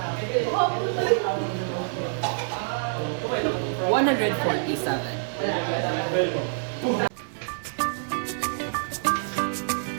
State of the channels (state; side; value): silent; left; digital silence